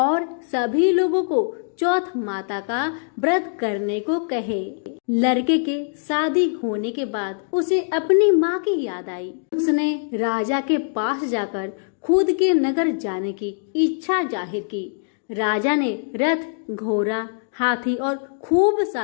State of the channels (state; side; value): silent; right; digital silence